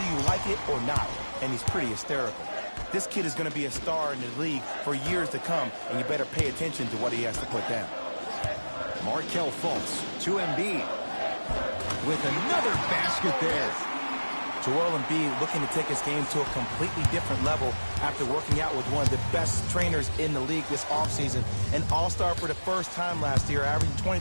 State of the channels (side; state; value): both; inverted; correlation -1.00